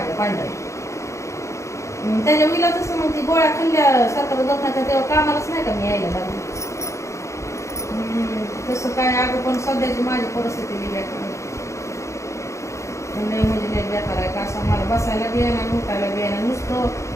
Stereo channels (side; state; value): right; late; 0.14 ms